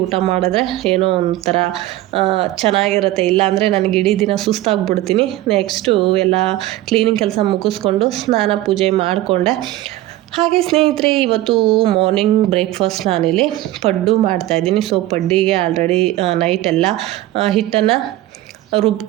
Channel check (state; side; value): quieter; left; 15.8 dB